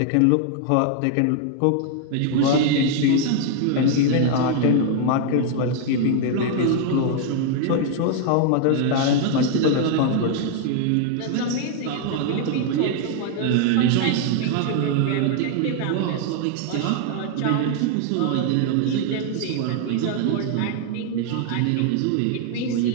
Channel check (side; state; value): both; different; correlation 0.00